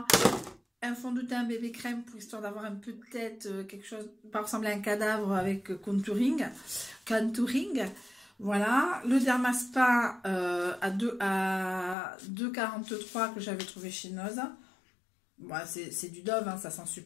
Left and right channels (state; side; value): drops out; right; at 12.0 s